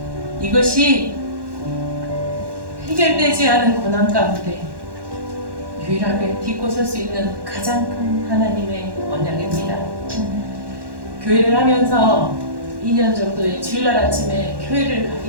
이것이 해결되지 않은 고난 가운데 유일하게 딛고 설 수 있는 가장 큰 하나님의 언약입니다. 교회를 하면서 2년 정도의 주일날 아침에 교회를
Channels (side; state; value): left; late; 1.1 ms